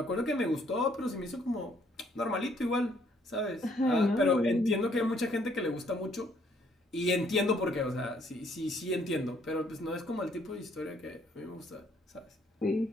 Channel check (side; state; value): both; normal; correlation 0.66